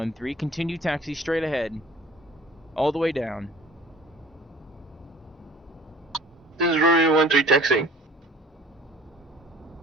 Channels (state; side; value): normal; both; correlation 0.49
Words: continue taxi straight ahead. All the way down. This is Romeo 13 taxiing.